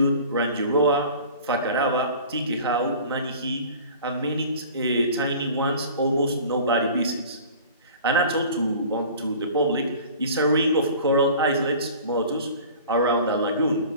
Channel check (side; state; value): both; inverted; correlation -0.43